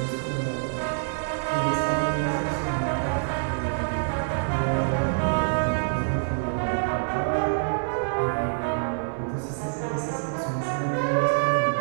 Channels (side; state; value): left; silent; digital silence